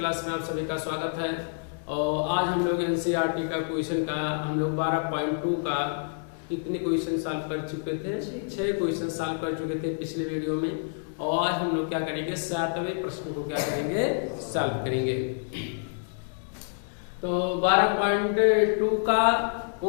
में आप सभी का स्वागत है। और आज हम लोग एनसीईआरटी का क्वेश्चन का हम लोग 12.2 का कितने क्वेश्चन सॉल्व कर चुके थे? 6 क्वेश्चन सॉल्व कर चुके थे पिछले वीडियो में। और आज हम लोग क्या करेंगे, 7वें प्रश्न को क्या करेंगे, सॉल्व करेंगे। तो 12.2 का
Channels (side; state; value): right; silent; digital silence